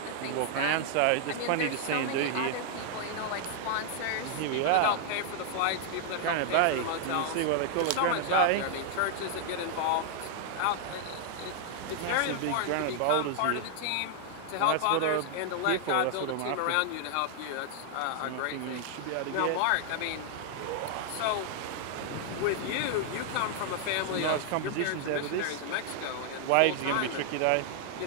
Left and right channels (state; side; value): different; both; correlation -0.01